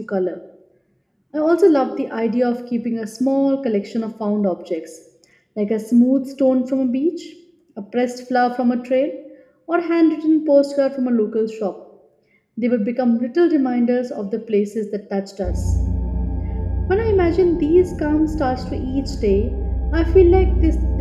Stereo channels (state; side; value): identical; both; correlation 1.00